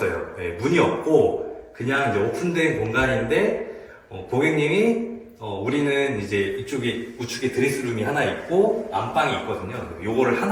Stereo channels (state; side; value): identical; both; correlation 1.00